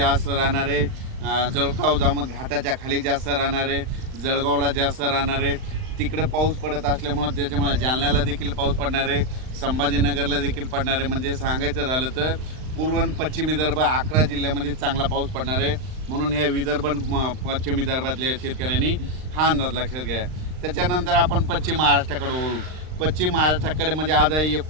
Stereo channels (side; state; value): left; late; 39 ms